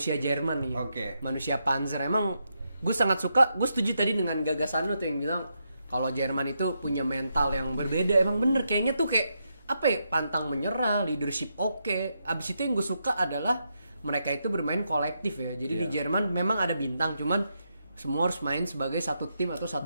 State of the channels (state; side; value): inverted; both; correlation -0.82